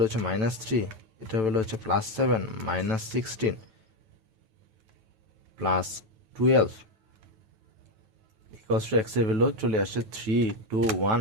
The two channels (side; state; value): left; late; 9.1 ms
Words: হচ্ছে -3, এটার ভ্যালু হচ্ছে +7, -16, +12 x এর ভ্যালু চলে আসছে 3, 2, 1